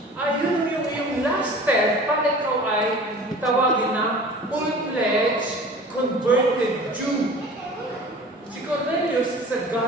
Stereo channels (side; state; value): both; normal; correlation 0.42